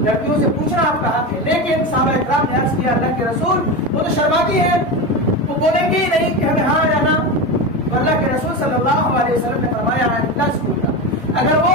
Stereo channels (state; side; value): normal; both; correlation 0.20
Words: لڑکیوں سے پوچھنا آپ کا حق ہے، لیکن صحابہ اکرام نے عرض کیا اللہ کے رسول وہ تو شرماتی ہیں، وہ بولیں گے ہی نہیں کہ ہمیں ہاں یا نہ۔ اللہ کے رسول صلی اللہ علیہ وسلم نے فرمایا اگر وہ